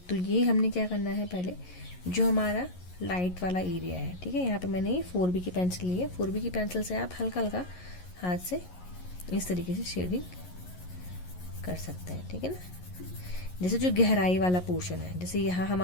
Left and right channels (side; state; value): right; late; 11 ms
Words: तो ये हमने क्या करना है, पहले जो हमारा लाइट वाला एरिया है, ठीक है। यहाँ पे मैंने ये 4B की पेंसिल ली है। 4B की पेंसिल से आप हल्का हल्का हाथ से इस तरीके से शेडिंग कर सकते हैं, ठीक है ना। जैसे जो गहराई वाला पोर्शन है, जैसे यहाँ